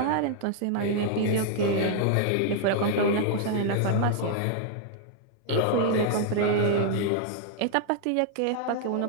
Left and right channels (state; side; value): different; both; correlation -0.01